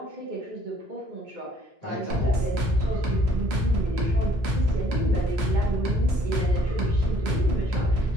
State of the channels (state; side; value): normal; both; correlation 0.61